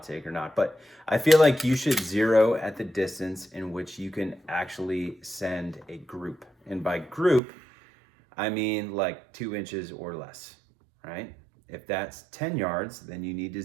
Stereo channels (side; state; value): left; drops out; at 7.4 s